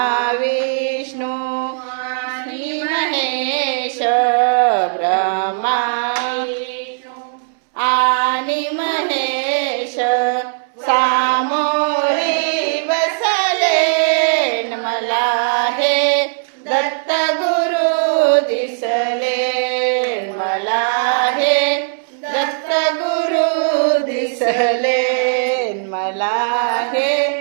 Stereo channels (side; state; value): left; silent; 67 dB below the other